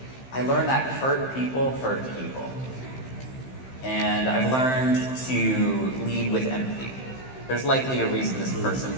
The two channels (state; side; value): late; right; 15 ms